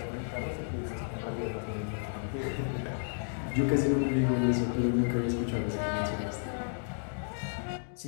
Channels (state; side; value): silent; right; digital silence